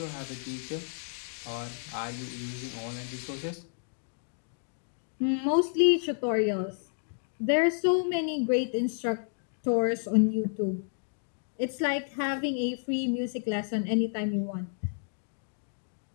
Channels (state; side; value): silent; right; digital silence